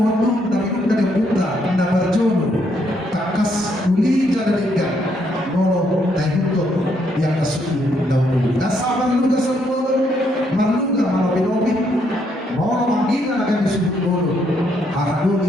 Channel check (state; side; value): normal; both; correlation 0.73